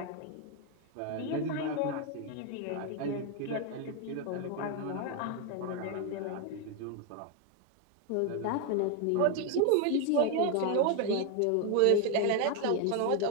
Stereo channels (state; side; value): different; both; correlation 0.01